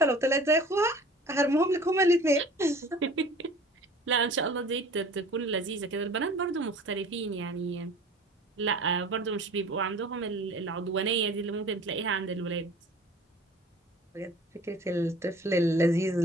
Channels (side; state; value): both; normal; correlation 0.45